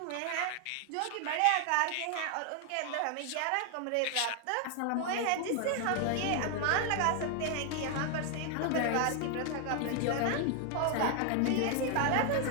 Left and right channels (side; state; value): both; different; correlation 0.00